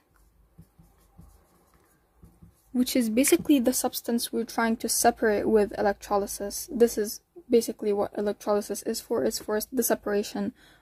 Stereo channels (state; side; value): identical; both; correlation 1.00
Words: which is basically the substance we're trying to separate with electrolysis. This is basically what electrolysis is for. It's for the separation